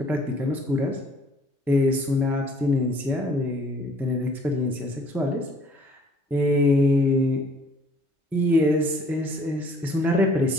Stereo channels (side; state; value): both; normal; correlation 0.58